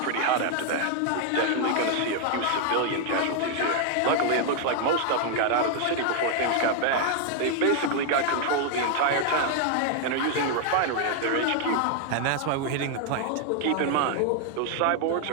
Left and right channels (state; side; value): different; both; correlation 0.00